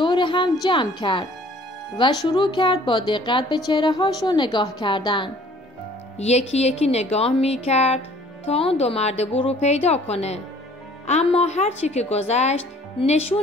هم جمع کرد و شروع کرد با دقت به چهره هاشون نگاه کردن. یکی یکی نگاه می کرد تا اون دو مرد بور رو پیدا کنه، اما هرچی که گذشت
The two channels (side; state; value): both; normal; correlation 0.55